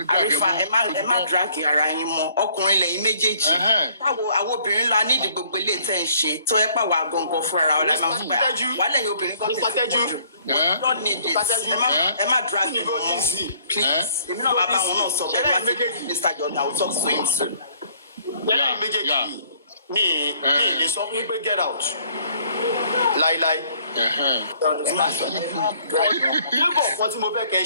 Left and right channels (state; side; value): inverted; both; correlation -0.61